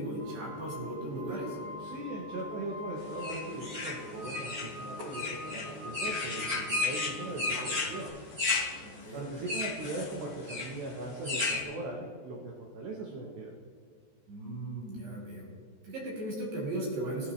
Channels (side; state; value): left; late; 14 ms